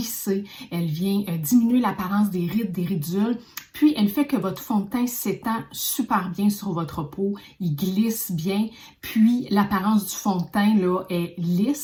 elle vient diminuer l'apparence des rides, des ridules, puis elle fait que votre fond de teint s'étend super bien sur votre peau, il glisse bien, puis l'apparence du fond de teint est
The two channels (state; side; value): identical; both; correlation 1.00